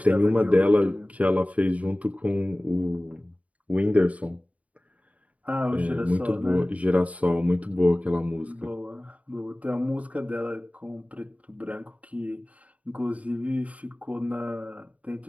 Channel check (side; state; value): left; late; 0.069 ms